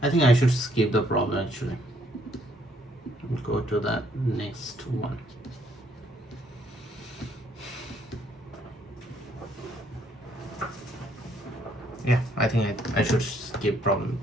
I think I should skip the problem actually. Go to the next one. Yeah, I think I should skip problem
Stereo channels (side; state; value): both; normal; correlation 0.68